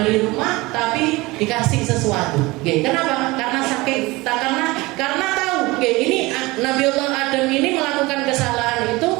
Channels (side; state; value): left; quieter; 21.9 dB